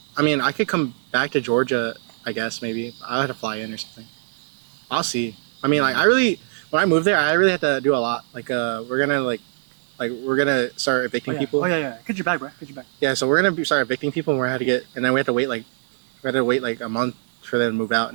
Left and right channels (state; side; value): silent; left; digital silence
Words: I mean, I could come back to Georgia. I guess maybe I'll have to fly in or something. I'll see. I mean, like when I moved there, I really had to do a lot. Like we're gonna start evicting people. Oh yeah. Get your bag, bro. Get your bag. Yeah, so we're gonna start evicting people, and and then we have to wait like a month for them to move out,